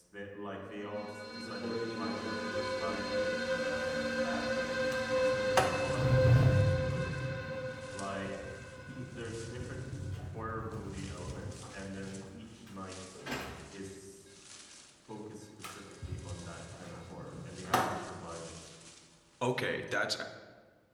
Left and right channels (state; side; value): identical; both; correlation 1.00